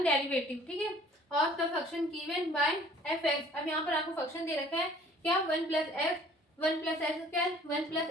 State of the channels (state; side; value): normal; both; correlation 0.53